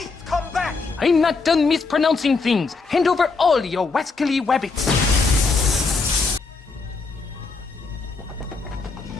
Come back! I'm not done mispronouncing things. Hand over all your wascally wabbits.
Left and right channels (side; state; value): right; quieter; 4.2 dB